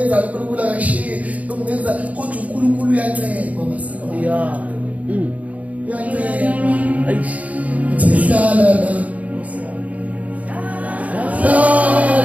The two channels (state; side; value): late; left; 0.070 ms